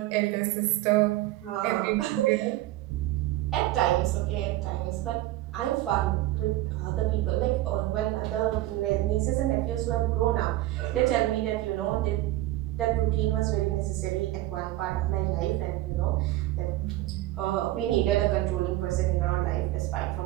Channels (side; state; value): left; quieter; 16.1 dB